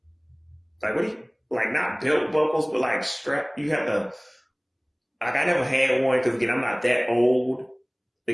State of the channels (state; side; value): identical; both; correlation 1.00